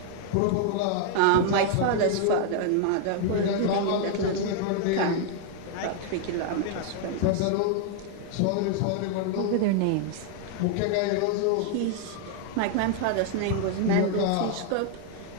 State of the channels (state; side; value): different; both; correlation 0.00